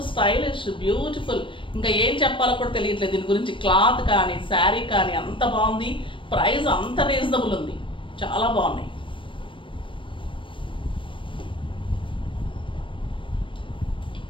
స్టైలిష్ బ్యూటిఫుల్, ఇంకా ఏం చెప్పాలో కూడా తెలియట్లేదు దీని గురించి. క్లాత్ కానీ శారీ కానీ అంత బాగుంది, ప్రైస్ అంత రీజనబుల్ ఉంది, చాలా బాగున్నాయి.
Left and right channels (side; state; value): right; late; 0.25 ms